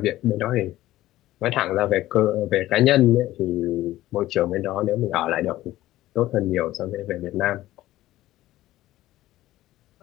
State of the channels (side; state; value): right; quieter; 15.5 dB